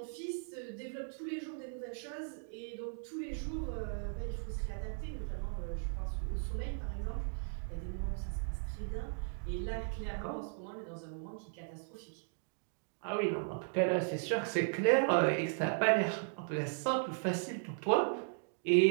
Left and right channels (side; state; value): left; silent; digital silence